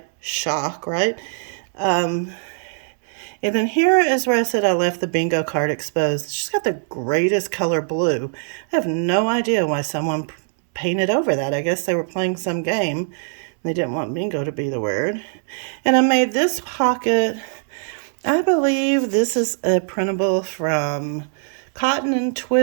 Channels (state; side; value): silent; left; 65 dB below the other